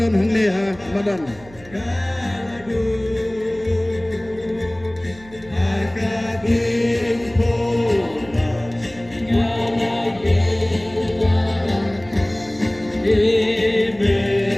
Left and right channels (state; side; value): noise; right; hum, 22 dB below the sound